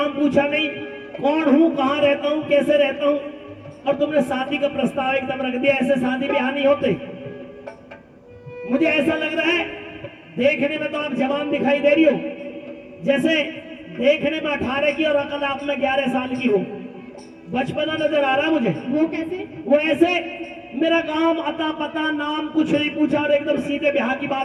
पूछा नहीं, कौन हूं, कहां रहता हूं, कैसे रहता हूं, और तुमने शादी का प्रस्ताव एकदम रख दिया। ऐसे शादी ब्याह नहीं होते। मुझे ऐसा लग रहा है, देखने में तो आप जवान दिखाई दे रही हो, जैसे देखने में 18 की और अकल आप में 11 साल की हो। बचपना नजर आ रहा मुझे। वो कैसे? वो ऐसे मेरा काम, अता पता, नाम कुछ नहीं पूछा और एकदम सीधे ब्याह की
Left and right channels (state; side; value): identical; both; correlation 1.00